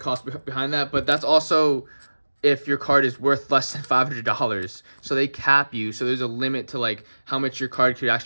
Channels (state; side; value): inverted; both; correlation -1.00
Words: behind that. But that's also if your card is worth less than $500. So they cap you, so there's a limit to like how much your card could